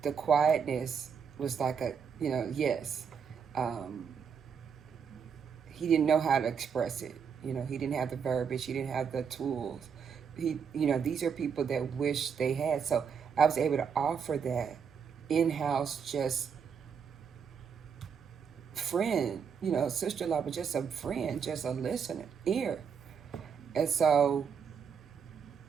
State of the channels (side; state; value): left; quieter; 6.7 dB